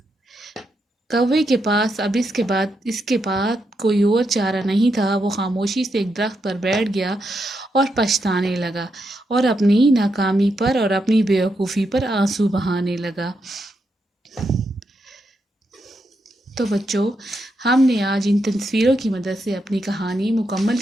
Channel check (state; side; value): normal; both; correlation 0.82